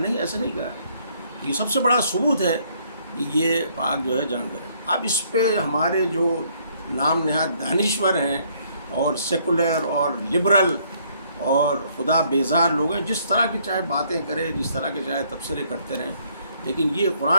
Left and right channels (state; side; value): inverted; both; correlation -0.66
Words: ایسا نہیں کہا. یہ سب سے بڑا ثبوت ہے کہ یہ پاک جو ہے جانور ہے. اب اس پہ ہمارے جو نام نہاد دانشور ہیں اور سیکولر اور لبرل اور خدا بیزار لوگ ہیں, جس طرح کی چاہے باتیں کریں, جس طرح کے چاہے تبصرے کرتے رہیں, لیکن یہ